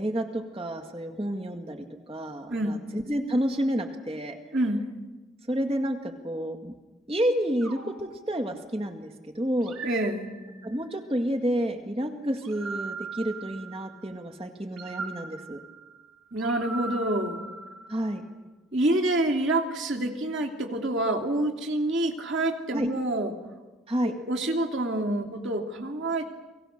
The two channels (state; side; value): normal; both; correlation 0.62